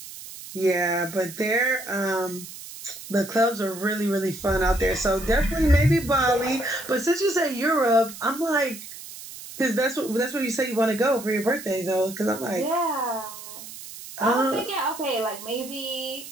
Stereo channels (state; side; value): noise; right; hiss, 13 dB below the sound